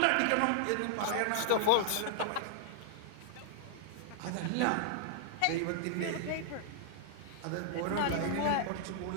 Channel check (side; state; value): both; different; correlation -0.01